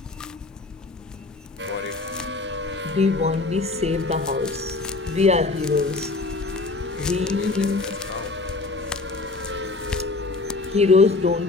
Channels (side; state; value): right; quieter; 3.6 dB